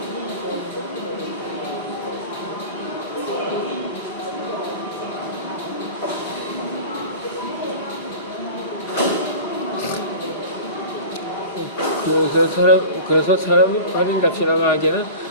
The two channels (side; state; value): both; inverted; correlation -0.36